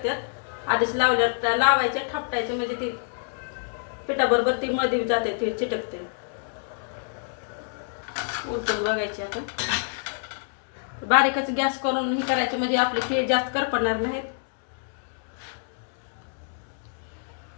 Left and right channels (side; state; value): right; silent; digital silence